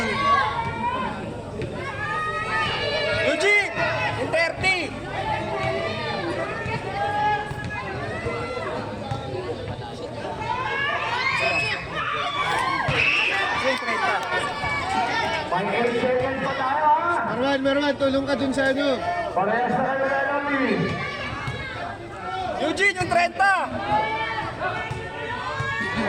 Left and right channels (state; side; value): identical; both; correlation 1.00